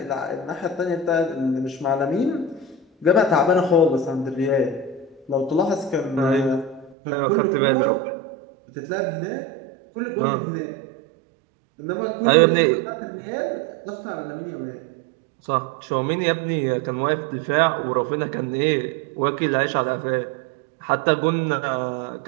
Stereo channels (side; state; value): left; drops out; at 7.0 s